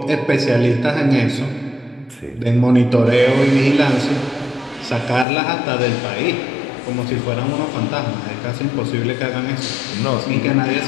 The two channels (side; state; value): right; drops out; at 5.2 s